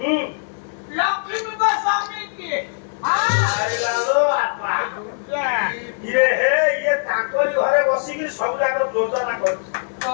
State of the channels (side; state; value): right; silent; digital silence